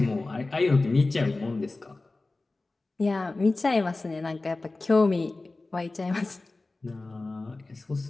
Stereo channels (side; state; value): right; quieter; 3.3 dB